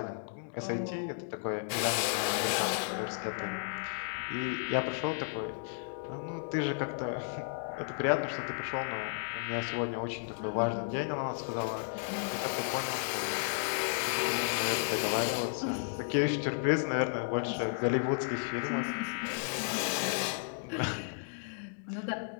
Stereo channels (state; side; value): silent; right; digital silence